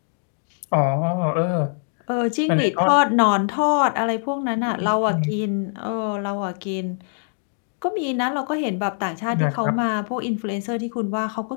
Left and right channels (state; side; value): silent; right; 63 dB below the other